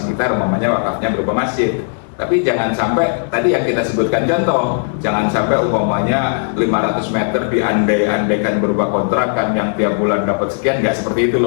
umpamanya wakafnya berupa masjid. Tapi jangan sampai tadi yang kita sebutkan contoh, jangan sampai umpamanya 500 meter diandai-andaikan berupa kontrakan yang tiap bulan dapat sekian, nggak seperti itu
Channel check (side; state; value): right; silent; digital silence